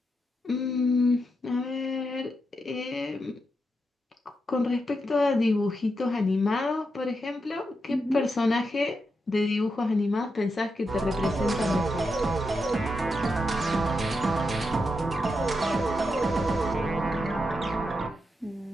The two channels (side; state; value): both; normal; correlation 0.85